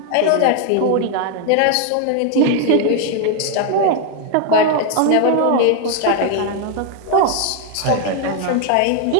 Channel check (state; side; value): different; both; correlation 0.00